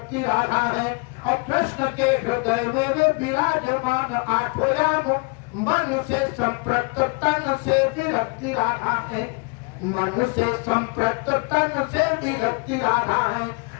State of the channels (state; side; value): quieter; right; 31.8 dB